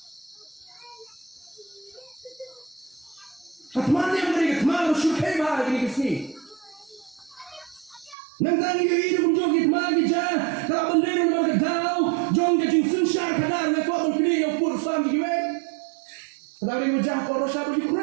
Katmanya mereka kemaru syukai bah ini kesini. Nanti ini kunjung kita lagi jah. Kalau bendera mereka tahu, jong ke jinsun syar kadar lekor berpilih yang pur sam giwe. Kadang mereka kau Rusia bagi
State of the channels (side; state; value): left; drops out; at 8.2 s